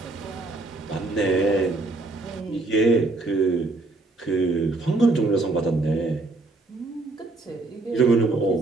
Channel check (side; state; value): left; quieter; 3.2 dB